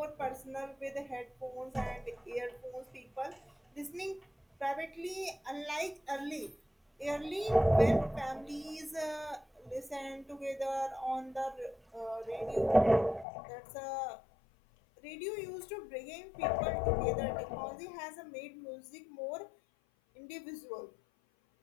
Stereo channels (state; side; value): drops out; right; at 13.2 s